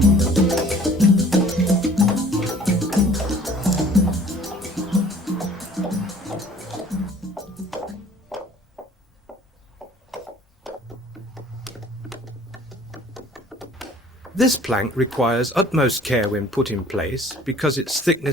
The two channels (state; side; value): normal; both; correlation 0.52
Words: This plank requires utmost care when put in place because its